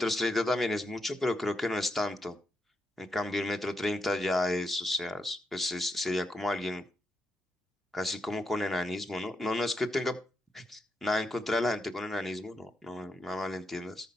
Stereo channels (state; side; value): normal; both; correlation 0.83